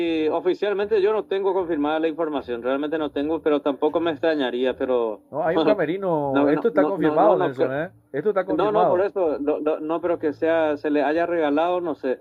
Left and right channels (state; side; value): identical; both; correlation 1.00